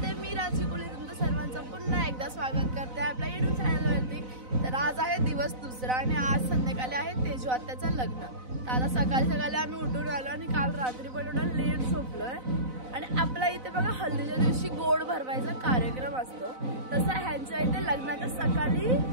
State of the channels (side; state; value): left; late; 4.0 ms